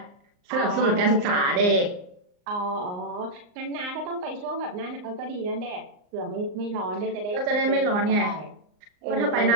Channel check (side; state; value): left; late; 39 ms